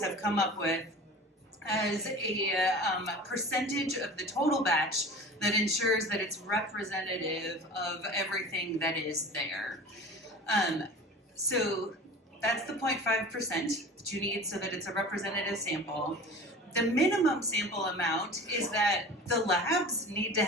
have come up with as a percentage of the total batch that ensures that it's representative of everything that is there. So that's the 0.5% that you need so that it's a representative sample. The minimum sample amount is that the labs need to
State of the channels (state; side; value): normal; both; correlation 0.39